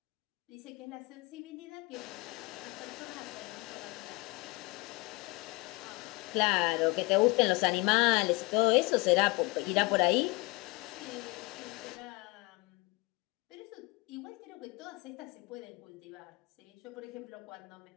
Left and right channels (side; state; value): right; quieter; 25.8 dB